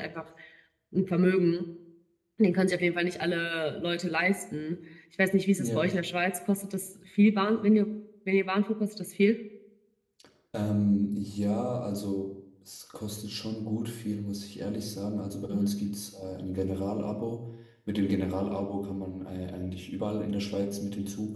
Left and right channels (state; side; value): identical; both; correlation 1.00